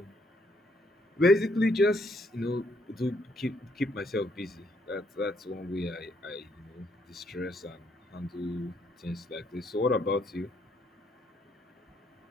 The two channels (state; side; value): normal; both; correlation 0.71